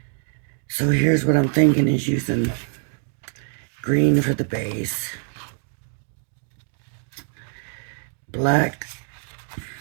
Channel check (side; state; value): left; silent; 62 dB below the other